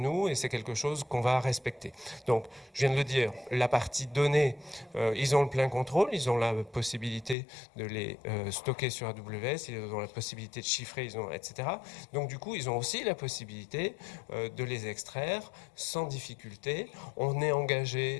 et c'est quelque chose qu'on va respecter. Donc, je viens de le dire, la partie données, ils ont le plein contrôle, ils ont la possibilité de les stocker sur AWS, ils ont la possibilité de chiffrer, etc. Donc, du coup, ils ont aussi la possibilité de les extraire sans difficulté. On est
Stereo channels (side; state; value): right; drops out; at 7.4 s